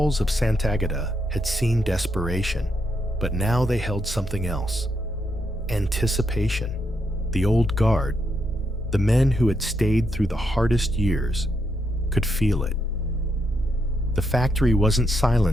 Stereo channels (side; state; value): both; normal; correlation 0.80